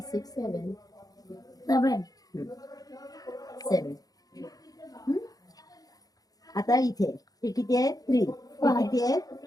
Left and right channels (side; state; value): right; late; 0.18 ms